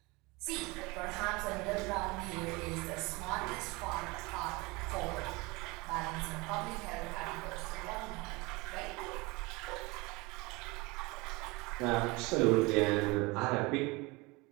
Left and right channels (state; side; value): quieter; left; 24.8 dB